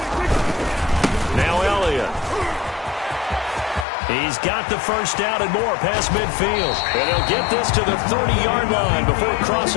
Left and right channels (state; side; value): drops out; right; at 3.9 s